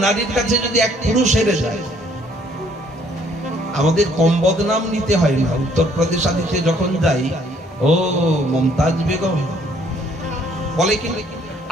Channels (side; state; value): both; normal; correlation 0.63